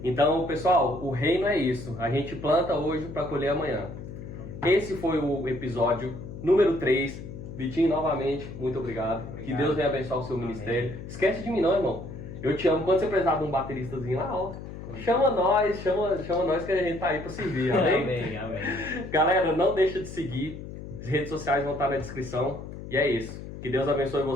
Então, pessoal, o reino é isso. A gente planta hoje para colher amanhã. Esse foi o episódio número 3. Vitinho, novamente, muito obrigado. Que Deus venha abençoar o seu ministério. Esquece de mim não, irmão. Eu te amo. Quando você precisar de um bateristazinho lá, ó, chama nós que a gente tá aí pra servir, amém? Amém, amém. Galera, não deixa de seguir. As redes sociais vão estar na descrição. E é isso. Que Deus abençoe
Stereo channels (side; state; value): left; noise; hum, 11 dB below the sound